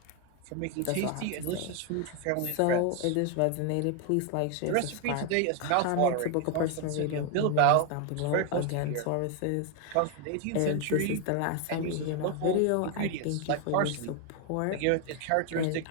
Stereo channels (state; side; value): different; both; correlation 0.01